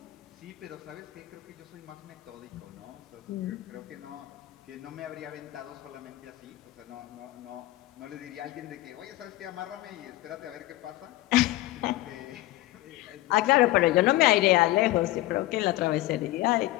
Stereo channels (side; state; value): right; quieter; 17.1 dB